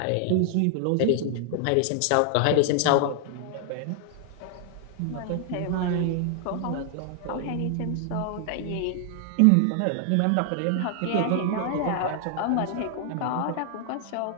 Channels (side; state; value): both; different; correlation 0.00